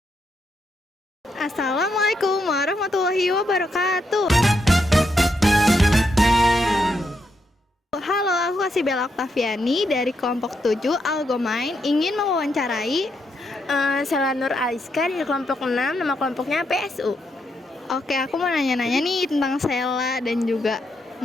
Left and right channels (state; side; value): normal; both; correlation 0.80